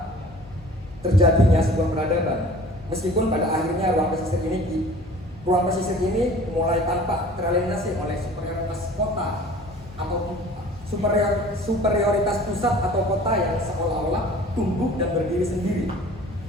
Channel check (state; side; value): normal; both; correlation 0.47